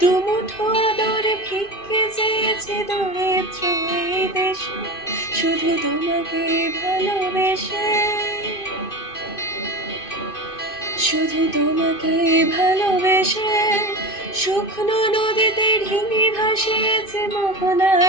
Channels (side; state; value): right; late; 2.5 ms